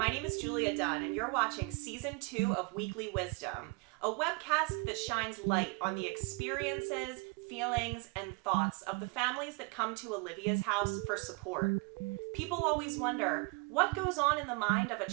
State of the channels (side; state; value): left; quieter; 28.6 dB